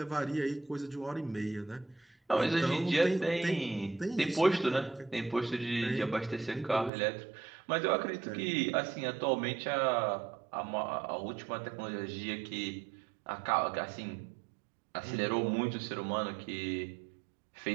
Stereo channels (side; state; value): left; drops out; at 6.9 s